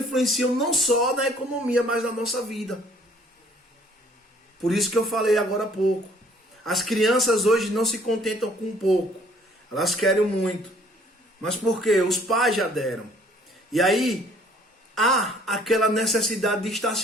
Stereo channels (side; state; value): both; normal; correlation 0.58